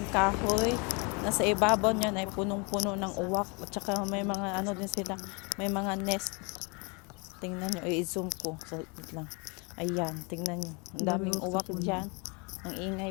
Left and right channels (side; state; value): right; quieter; 31.9 dB